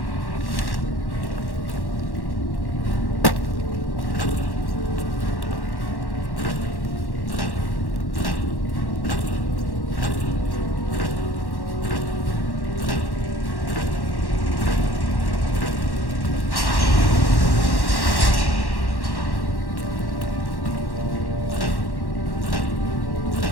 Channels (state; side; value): late; right; 1.1 ms